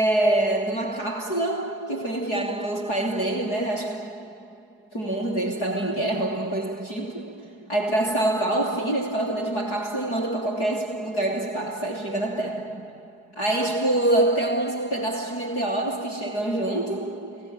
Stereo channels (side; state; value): right; late; 4.7 ms